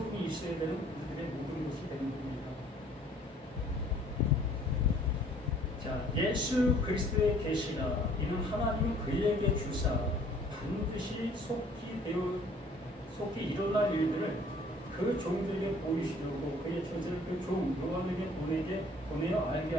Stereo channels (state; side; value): normal; both; correlation 0.56